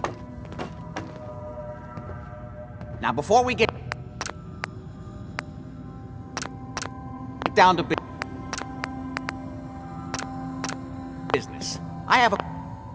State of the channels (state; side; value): identical; both; correlation 1.00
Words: Now, before we get down to business, I have a